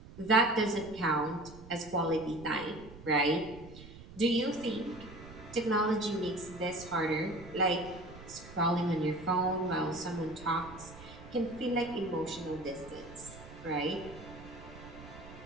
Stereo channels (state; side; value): noise; right; rumble, 17 dB below the sound